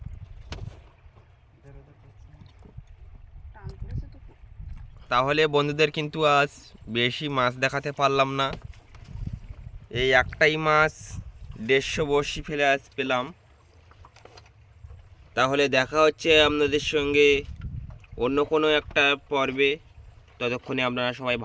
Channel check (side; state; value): both; identical; correlation 1.00